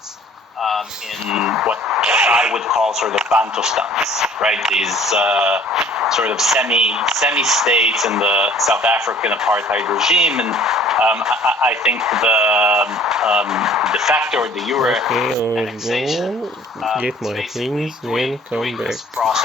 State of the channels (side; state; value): both; normal; correlation 0.53